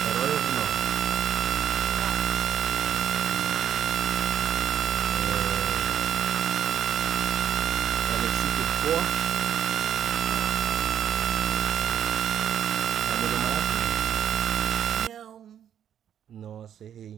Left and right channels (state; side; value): quieter; left; 9.6 dB